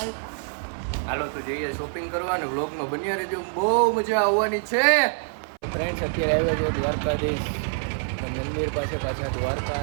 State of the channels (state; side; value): silent; left; 59 dB below the other